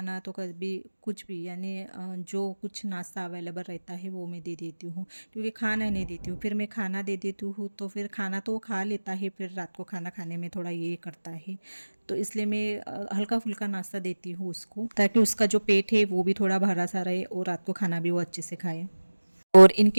तो कभी कुछ भी, यानी जो कुछ नाश्ता अवेलेबल रहता है वो मैं दे देती हूँ, क्योंकि खाना नहीं देती हूँ फिर मैं खाना दे देती हूँ तो फिर खाना तो वो खा लेता है, फिर रात को खाना खाने में थोड़ा ये करता है, तो इसलिए मैं हल्का फुल्का नाश्ता देती हूँ उसको, ताकि उसका जो पेट है वो भी थोड़ा भरा सा रहे और रात को खाना भी वो अच्छे से खाए। और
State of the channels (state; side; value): inverted; both; correlation -1.00